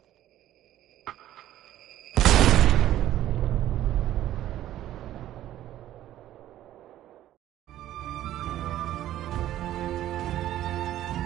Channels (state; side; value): quieter; left; 13.1 dB